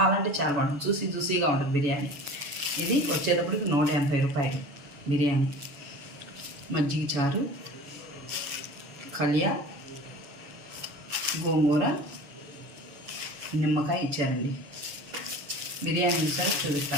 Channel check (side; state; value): left; late; 7.0 ms